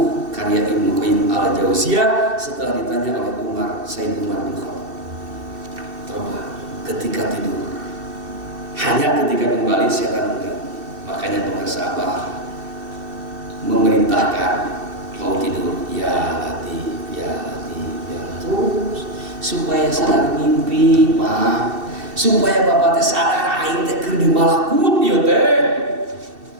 karya Ibnu Qayyim al-Jauziyah setelah ditanya oleh Sayyid Umar bin Khattab. Coba ketika tidur, hanya ketika kembali setan enggak. Makanya pemirsa Abah memerintahkan mau tidur, ya Latif, ya Latif, ya terus supaya sadar mimpi, Pak. Supaya bapak teh sadar aing teh keur di malakut ieu teh.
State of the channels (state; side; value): late; left; 2.7 ms